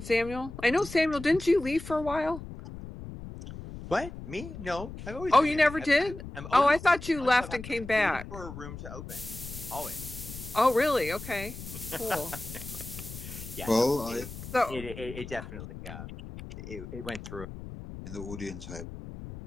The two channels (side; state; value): left; noise; rumble, 11 dB below the sound